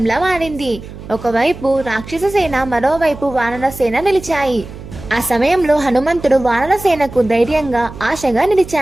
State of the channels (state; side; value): noise; right; hum, 14 dB below the sound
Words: మారింది. ఒకవైపు రాక్షస సేన, మరోవైపు వానర సేన నిలిచాయి. ఆ సమయంలో హనుమంతుడు వానర సేనకు ధైర్యంగా, ఆశగా